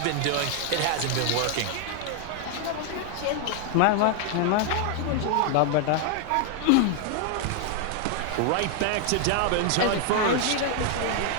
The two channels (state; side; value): different; both; correlation 0.00